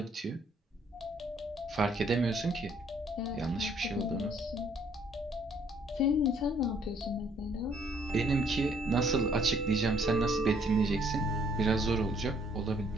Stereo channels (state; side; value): normal; both; correlation 0.64